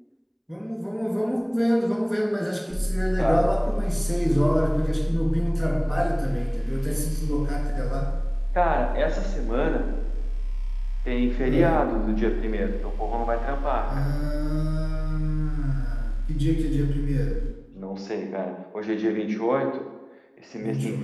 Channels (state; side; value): identical; both; correlation 1.00